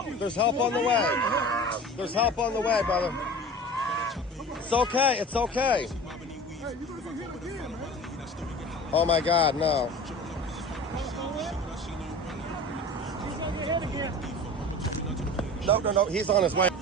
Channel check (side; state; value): both; normal; correlation 0.37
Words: There's help on the way. There's help on the way, brother. It's okay. It's okay. Oh my God, no. No. He's on his way.